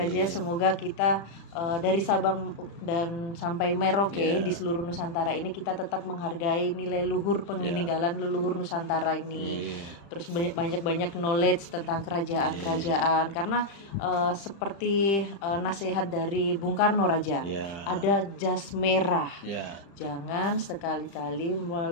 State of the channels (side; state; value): right; late; 35 ms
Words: Semoga kita dari Sabang dan sampai Merauke di seluruh Nusantara ini kita tetap menghargai nilai luhur peninggalan leluhur Nusantara ini. Terus banyak-banyak knowledge tentang kerajaan-kerajaan. Karena seperti nasihat dari Bung Karno Raja, ada jas merah. Jangan sekali-kali